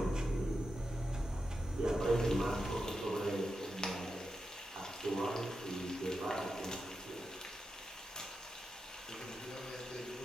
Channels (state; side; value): normal; both; correlation 0.88